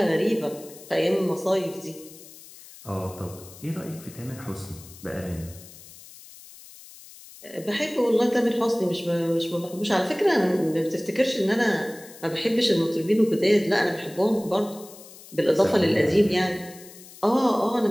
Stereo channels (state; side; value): noise; left; hiss, 19 dB below the sound